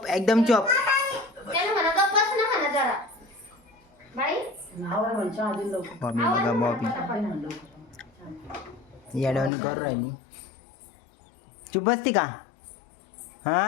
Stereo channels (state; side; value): drops out; right; at 9.5 s